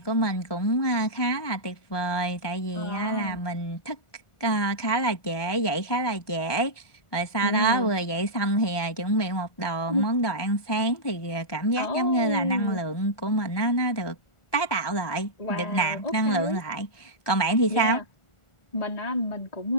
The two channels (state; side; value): late; right; 1.2 ms